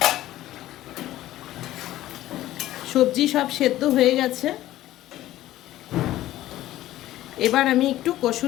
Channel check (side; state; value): right; quieter; 14.6 dB